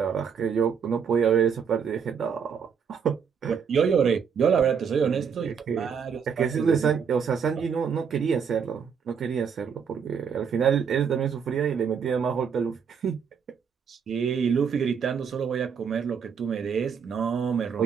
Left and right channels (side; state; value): left; quieter; 6.8 dB